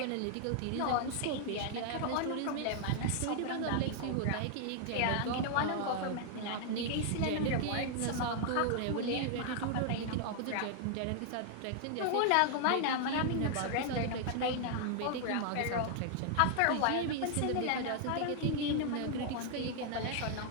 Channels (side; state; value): both; different; correlation 0.00